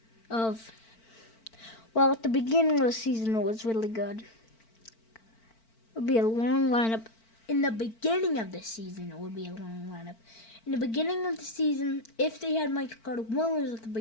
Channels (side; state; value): right; late; 4.5 ms